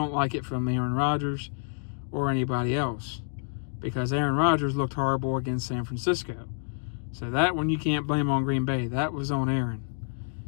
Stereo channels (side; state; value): right; silent; digital silence